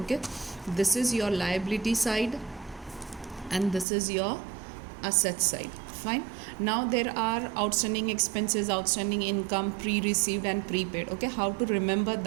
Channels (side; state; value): left; drops out; at 3.9 s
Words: This is your liability side and this is your asset side. Fine. Now there are outstanding expenses, outstanding income, pre-received and prepaid. Okay, how to remember